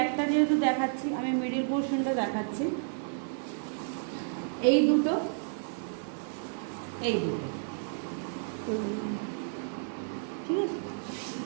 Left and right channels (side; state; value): left; silent; 57 dB below the other